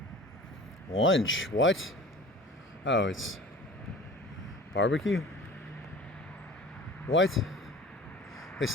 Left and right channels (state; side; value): normal; both; correlation 0.42